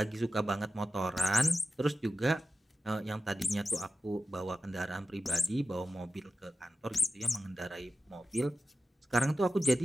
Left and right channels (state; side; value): normal; both; correlation 0.93